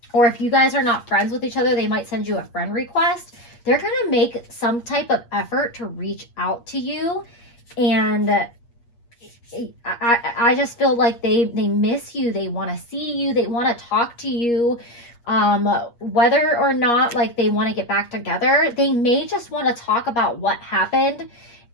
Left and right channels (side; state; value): right; late; 8.5 ms